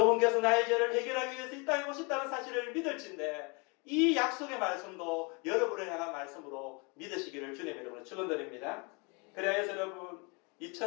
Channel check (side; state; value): right; quieter; 31.4 dB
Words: 나의 죄를 해결하기 위해서 이 땅에 오셨다는 사실을 믿을진데, 이 약속의 말씀도 여러분을 향한 말씀으로 믿으시기를 주님 여러분을 축원드립니다. 그래서 여러분,